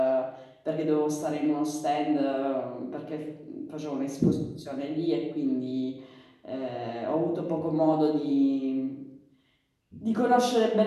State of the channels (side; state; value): both; identical; correlation 1.00